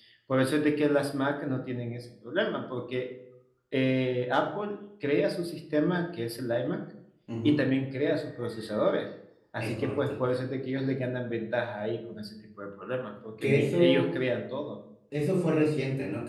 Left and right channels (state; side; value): identical; both; correlation 1.00